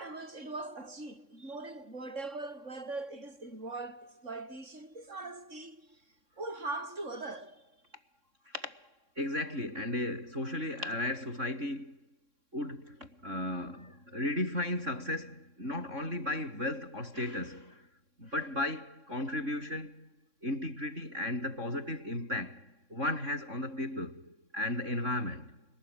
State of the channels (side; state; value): left; late; 3.6 ms